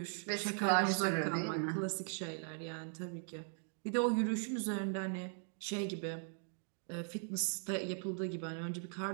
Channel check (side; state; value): left; silent; 52 dB below the other